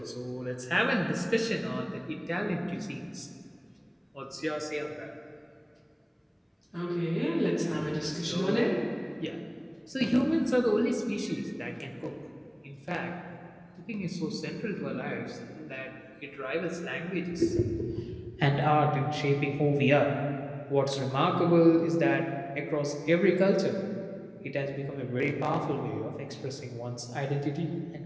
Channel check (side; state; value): both; identical; correlation 1.00